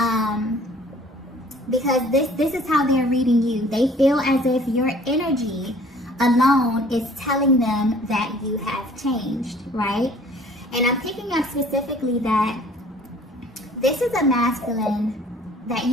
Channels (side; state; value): both; normal; correlation 0.53